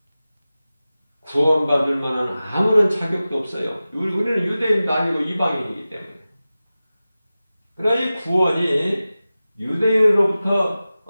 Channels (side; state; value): both; inverted; correlation -0.95